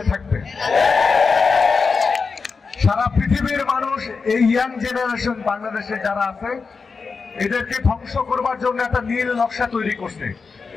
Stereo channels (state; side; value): quieter; right; 4.9 dB